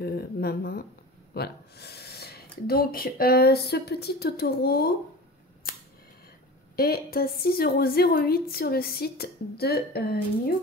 ma main, voilà. Donc, ce petit Totoro est à 6,08 € sur le site de New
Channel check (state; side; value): normal; both; correlation 0.34